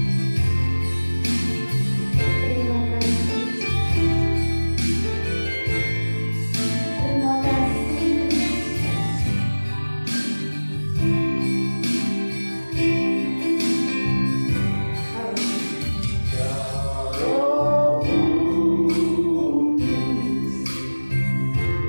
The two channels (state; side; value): inverted; both; correlation -1.00